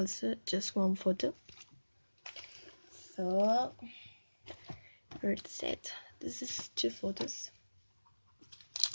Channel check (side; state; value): both; inverted; correlation -1.00